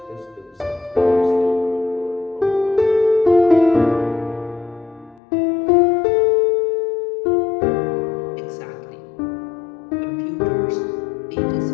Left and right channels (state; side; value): drops out; right; at 5.2 s